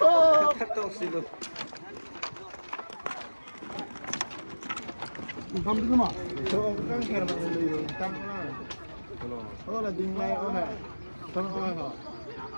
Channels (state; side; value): inverted; both; correlation -1.00